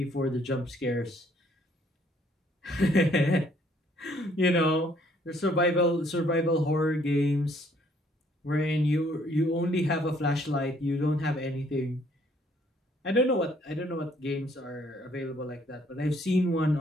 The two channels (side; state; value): both; normal; correlation 0.64